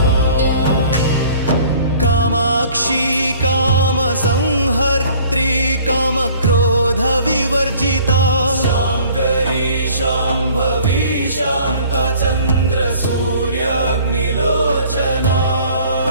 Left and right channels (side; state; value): both; inverted; correlation -0.52